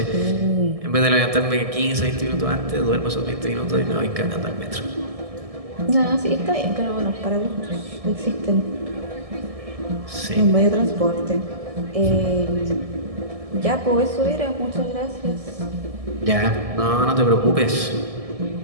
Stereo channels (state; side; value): late; left; 1.6 ms